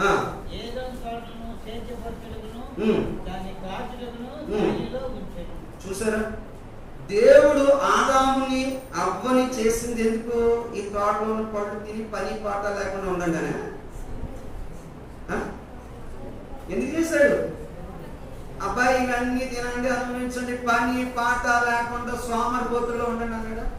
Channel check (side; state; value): both; identical; correlation 1.00